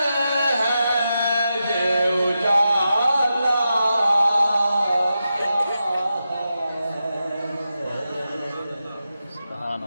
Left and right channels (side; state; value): both; inverted; correlation -0.89